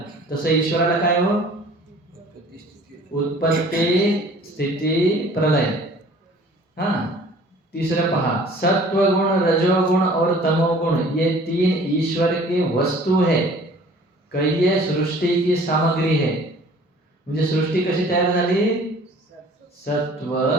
तसं ईश्वराला काय हो? उत्पत्ति, स्थिति, प्रलय. हा, तीसरा पहा, सत्वगुण, रजोगुण और तमोगुण ये 3 ईश्वर के वस्तु है. कैये सृष्टी की सामग्री है. म्हणजे सृष्टी कशी तयार झाली? सत्व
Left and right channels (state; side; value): normal; both; correlation 0.50